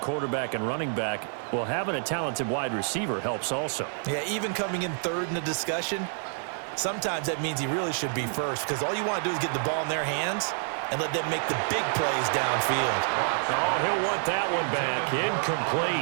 and running back. Well, having a talented wide receiver helps also. Yeah, even coming in 3rd in the discussion, sometimes that means he really should be first because all you want to do is get the ball in their hands and let them make the big plays downfield. Oh, he'll want that one back.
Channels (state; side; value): silent; left; 59 dB below the other